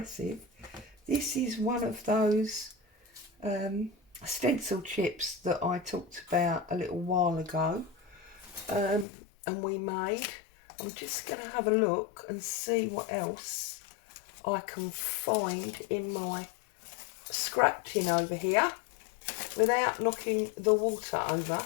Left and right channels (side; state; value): right; drops out; at 9.1 s